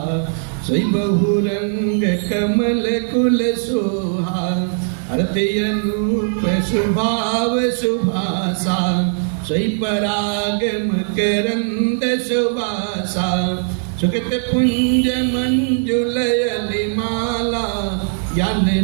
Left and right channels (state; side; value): silent; left; digital silence